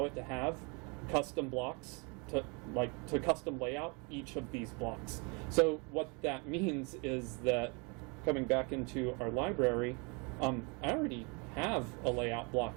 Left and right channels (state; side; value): quieter; left; 31.7 dB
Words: it to have custom blocks to custom layout each of these blocks. So what that means is that, coming back into our library, I already have a layout